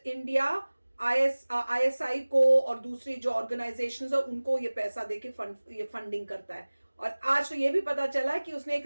ISI को और दूसरी जो ऑर्गेनाइजेशंस है उनको ये पैसा देके ये फंडिंग करता है। और आज तो ये भी पता चला कि उसने एक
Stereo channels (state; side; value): inverted; both; correlation -1.00